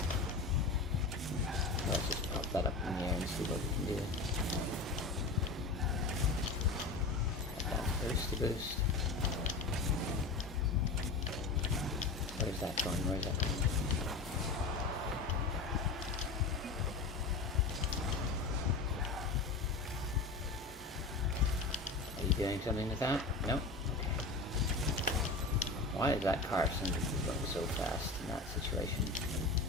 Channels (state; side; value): quieter; right; 3.7 dB